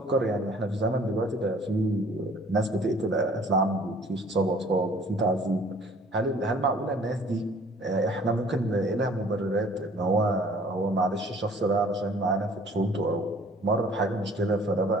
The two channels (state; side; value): normal; both; correlation 0.54